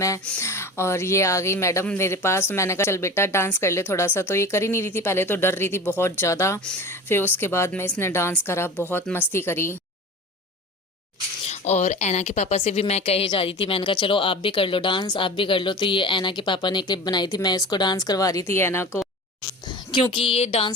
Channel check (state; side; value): normal; both; correlation 0.34